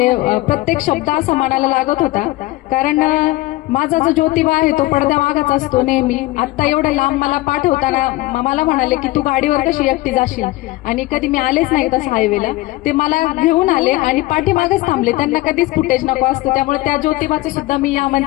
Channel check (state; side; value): quieter; right; 19.0 dB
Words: प्रत्येक शब्द असा मनाला लागत होता, कारण माझा जो ज्योतिबा आहे तो पडद्या मागच असतो नेहमी. आता एवढं लांब मला पाठवताना मला म्हणाले की तू गाडीवर कशी एकटी जाशील, आणि कधी मी आलेच नाही तसं हायवेला, ते मला घेऊन आले आणि पाठीमागच थांबले. त्यांना कधीच फुटेज नको असतो, त्यामुळे त्या ज्योतिबाचं सुद्धा मी या